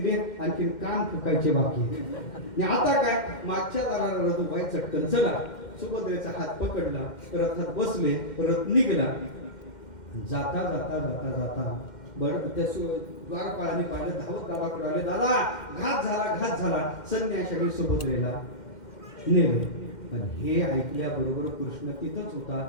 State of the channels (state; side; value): late; right; 2.1 ms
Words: आणखी कान फुकायचे बाकी. आता काय? मागच्या दाराला रथुबाई चटकन चला, सुभद्रेचा हात पकडला, रथात बसले, रथ निघला. जाता जाता जाता जाता त्या द्वारपाळाने पाहिलं, धावत दादाकडे आले, दादा घात झाला. संन्याशाने सुभद्रेला नेलं. पण हे ऐकल्याबरोबर कृष्ण तिथंच होता.